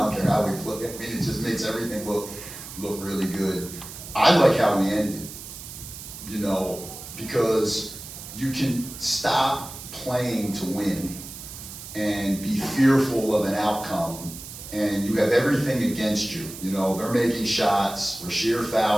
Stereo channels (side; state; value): right; noise; hiss, 12 dB below the sound